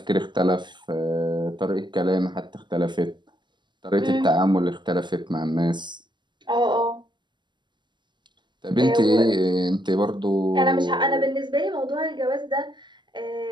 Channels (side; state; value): left; late; 0.22 ms